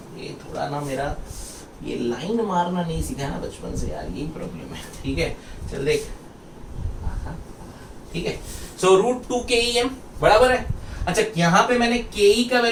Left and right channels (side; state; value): both; identical; correlation 1.00